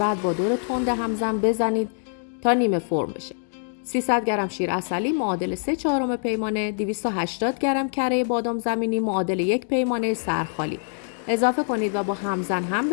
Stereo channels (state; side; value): silent; right; digital silence